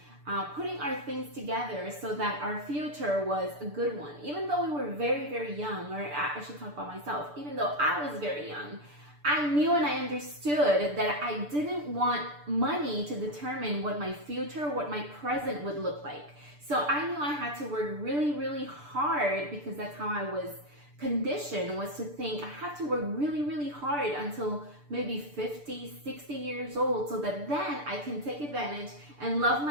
putting our things together so that our future was a good one. Even though we were very, very young, or I should talk about myself, even though I was very young, I knew and I understood that I didn't want money to determine what my future, what my present would look like. So I knew I had to work really, really hard, because that's how I was conditioned, was to think I have to work really, really hard until maybe 50, 60 years old, so that then I can take advantage and love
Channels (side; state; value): left; late; 6.8 ms